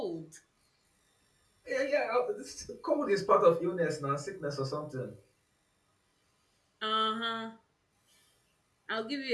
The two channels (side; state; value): both; identical; correlation 1.00